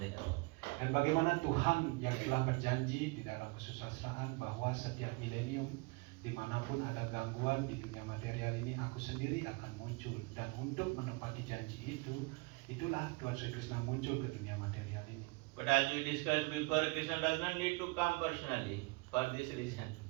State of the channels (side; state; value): left; quieter; 27.8 dB